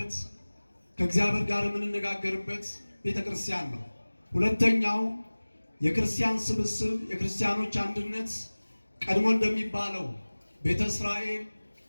ከእግዚአብሔር ጋር የምንነጋገርበት ቤተ ክርስቲያን ነው። ሁለተኛው የክርስቲያን ስብስብ፣ የክርስቲያኖች አንድነት ቀድሞ እንደሚባለው ቤተ እስራኤል፣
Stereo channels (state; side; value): inverted; both; correlation -1.00